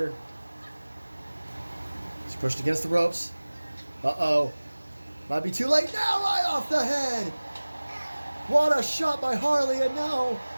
She's pushed against the ropes. Uh-oh. Might be too late now, right off the head. What a shot by Harley, and now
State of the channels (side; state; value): both; inverted; correlation -1.00